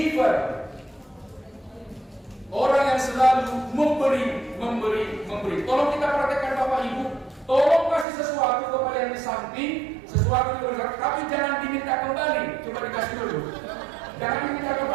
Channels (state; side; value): drops out; left; at 8.1 s